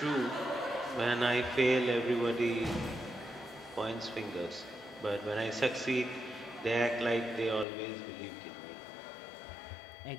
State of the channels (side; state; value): right; drops out; at 7.7 s